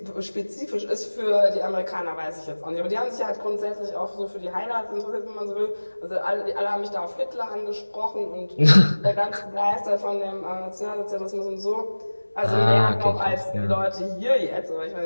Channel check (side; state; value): both; inverted; correlation -1.00